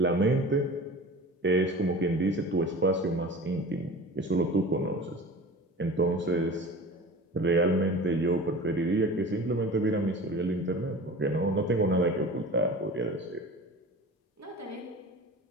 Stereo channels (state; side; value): normal; both; correlation 0.37